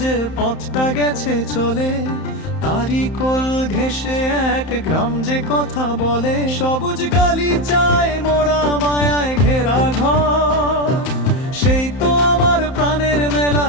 যে পথটা গেছে চলে, তারই কোল ঘেঁষে এক গ্রাম যে কথা বলে। সবুজ গালিচায় মোরা মায়ায় ঘেরা ঘর, সেই তো আমার প্রাণের মেলা,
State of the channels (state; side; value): late; right; 31 ms